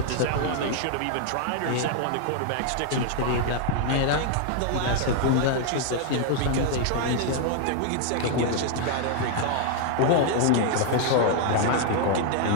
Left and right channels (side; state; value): both; different; correlation 0.00